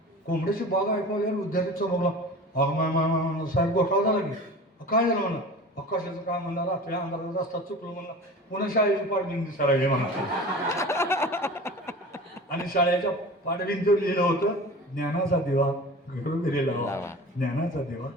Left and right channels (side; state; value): both; normal; correlation 0.37